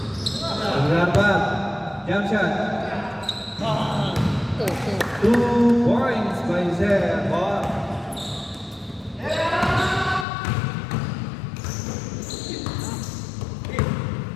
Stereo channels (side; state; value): right; drops out; at 10.2 s